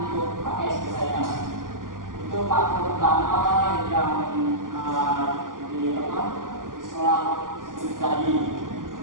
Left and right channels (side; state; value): left; late; 0.90 ms